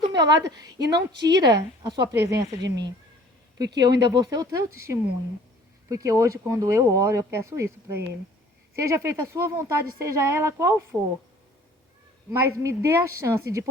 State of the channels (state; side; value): normal; both; correlation 0.52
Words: meu lado e não tira a sua presença de mim. Porque eu ainda vou ser o teu testemunho. Porque hoje, quando eu oro, eu peço isso para Ele. Seja feita a sua vontade, seja ela qual for. Mas me dê a chance de